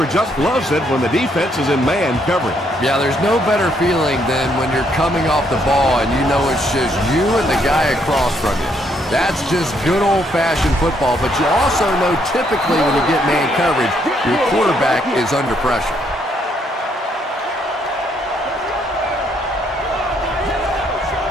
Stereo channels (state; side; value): normal; both; correlation 0.72